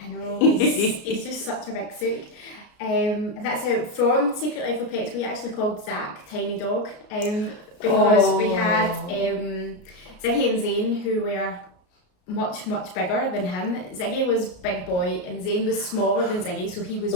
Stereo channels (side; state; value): right; late; 33 ms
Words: know, he's just such a big sook. That's out from Secret Life of Pets. We actually called Zach Tiny Dog, because we had Ziggy and Zane, who were much bigger than him. Ziggy was big boy and Zane was smaller than Ziggy, so he was